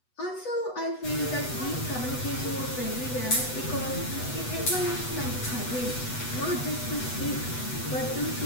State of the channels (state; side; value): late; right; 8.1 ms